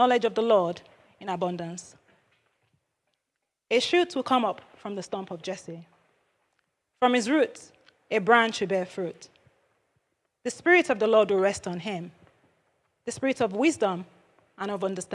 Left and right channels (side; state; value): both; identical; correlation 1.00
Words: of the Lord in abundance. A shoot will come up from the stump of Jesse. From his roots, a branch will bear fruit. The Spirit of the Lord will rest on him, the Spirit of wisdom and of